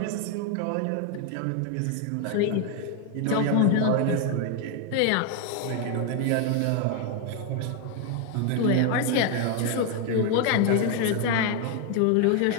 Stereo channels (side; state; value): both; different; correlation 0.01